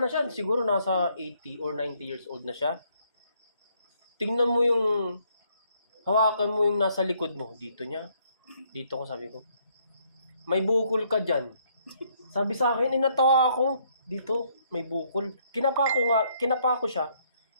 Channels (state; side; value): inverted; both; correlation -0.69